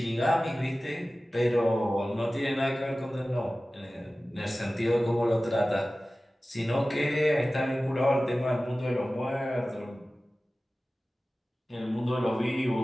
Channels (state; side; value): normal; both; correlation 0.96